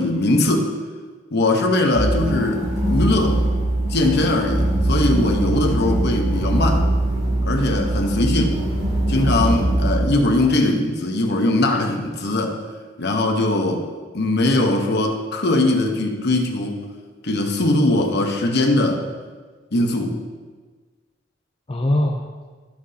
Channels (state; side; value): normal; both; correlation 0.62